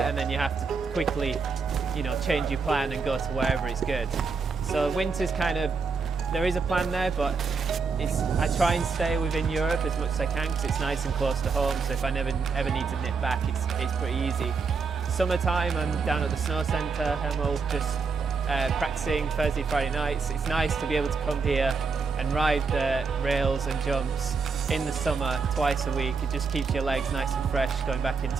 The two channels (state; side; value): quieter; left; 4.9 dB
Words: and then you have to quickly, change your plan and go to wherever it's good. So winter's kind of, there is a plan there, but I try and stay within Europe as much as I can because it's nice and close to home, so if I ever need to nip back, it's pretty easy. Summertime, I'm down at the snow centre, Hemel, just practicing Thursday, Friday nights. It's nice to be able to come here and ride the rails and jumps in the summer twice a week. It just keeps your legs nice and fresh going back